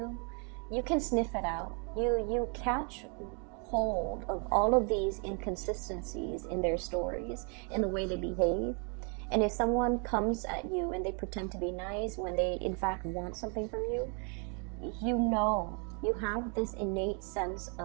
you can sniff it out. You catch hold of all of these inconsistencies in their stories, in the way they behave. And if someone comes at you and they pretend to be nice when they in fact want something from you, you know, you have this innate sense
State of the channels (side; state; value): left; quieter; 37.4 dB